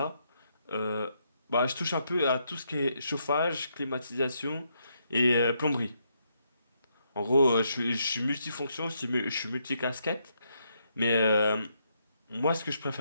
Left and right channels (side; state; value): both; inverted; correlation -0.77